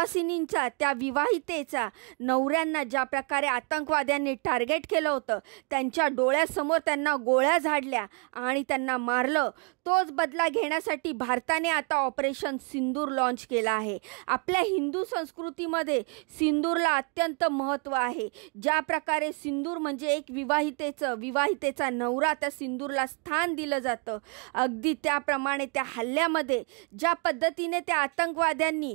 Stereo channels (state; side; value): quieter; left; 37.6 dB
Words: त्या विवाहितेचा नवऱ्यांना ज्या प्रकारे आतंकवाद्यांनी टार्गेट केलं होतं, त्यांच्या डोळ्यासमोर त्यांना गोळ्या झाडल्या आणि त्यांना मारलं, तोच बदला घेण्यासाठी भारताने आता ऑपरेशन सिंदूर लॉन्च केला आहे। आपल्या हिंदू संस्कृतीमध्ये सिंदूरला अत्यंत महत्त्व आहे। ज्या प्रकारे सिंदूर म्हणजे एक विवाहितेचा नवरा, त्या सिंदूरला स्थान दिलं जातं, अगदी त्याप्रमाणे त्या हल्ल्यामध्ये ज्या पद्धतीने त्या आतंकवाद्यांनी